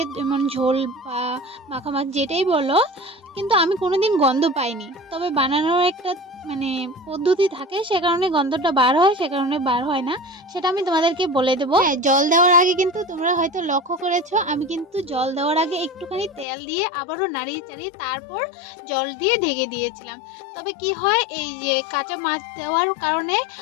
যেমন ঝোল বা মাখা মাছ যেটাই বলো, কিন্তু আমি কোনো দিন গন্ধ পাইনি। তবে বানানোর একটা মানে পদ্ধতি থাকে, সে কারণে গন্ধটা বার হয়, সে কারণে বার হয় না, সেটা আমি তোমাদেরকে বলে দেবো। হ্যাঁ, জল দেওয়ার আগে কিন্তু তোমরা হয়তো লক্ষ্য করেছো, আমি কিন্তু জল দেওয়ার আগে একটুখানি তেল দিয়ে আবারও নাড়িয়ে চাড়িয়ে তারপর জল দিয়ে ঢেকে দিয়েছিলাম। তবে কি হয়, এই যে কাঁচা মাছ দেওয়ার কারণে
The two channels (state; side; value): drops out; right; at 16.4 s